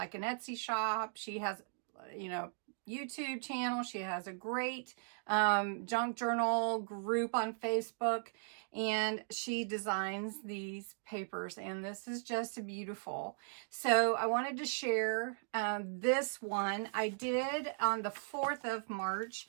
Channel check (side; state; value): left; silent; digital silence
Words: an Etsy shop. She has, YouTube channel. She has a great junk journal group on Facebook. And she designs these papers. And this is just beautiful. So I wanted to share this one. I did on the 4th of March